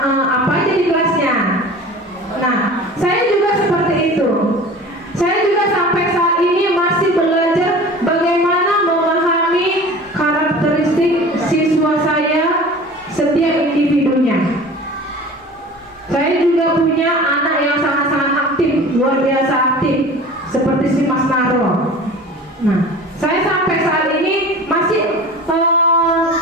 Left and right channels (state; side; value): normal; both; correlation 0.40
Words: apa aja di kelasnya. Nah, saya juga seperti itu. Saya juga sampai saat ini masih belajar bagaimana memahami karakteristik siswa saya setiap individunya. Saya juga punya anak yang sangat-sangat aktif, luar biasa aktif, seperti si Mas Naro. Nah, saya sampai saat ini masih